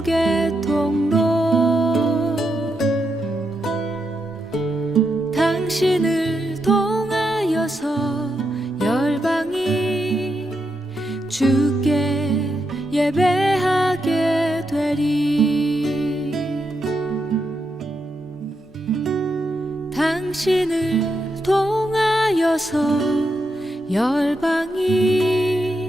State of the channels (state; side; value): normal; both; correlation 0.83